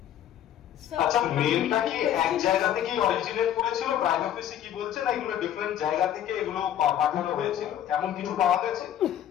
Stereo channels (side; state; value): right; quieter; 10.7 dB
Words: আচ্ছা, মেলটা কি এক জায়গা থেকেই অরিজিনেট করেছিল, প্রাইম অফিসে কি বলছে, না এগুলো ডিফারেন্ট জায়গা থেকে এগুলো পাঠানো হয়েছিল, এমন কিছু পাওয়া গেছে?